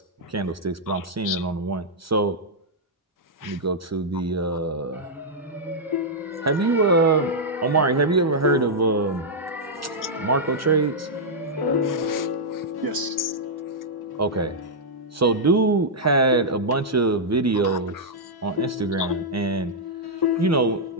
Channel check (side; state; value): both; normal; correlation -0.07